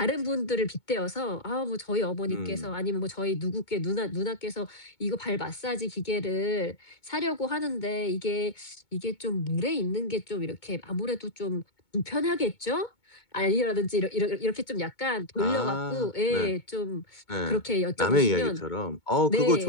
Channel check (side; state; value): right; late; 2.2 ms